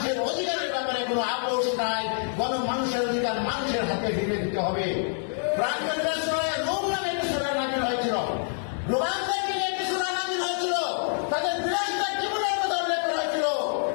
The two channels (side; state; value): right; silent; digital silence